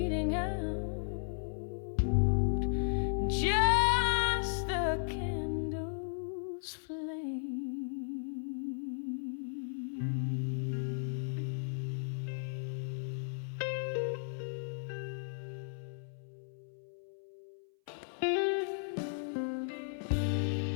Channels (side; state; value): right; silent; 54 dB below the other